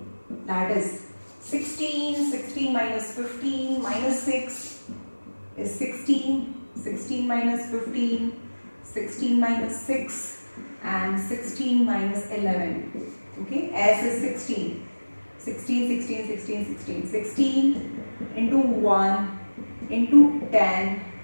That is 16 minus 15 minus 6 is 16. 16 minus 15, 16 minus 6 and 16 minus 11. Okay, S is 16. 16 into 1 into 10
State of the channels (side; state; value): both; inverted; correlation -1.00